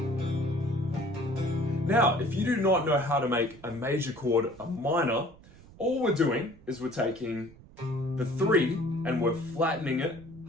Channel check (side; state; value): right; noise; rumble, 22 dB below the sound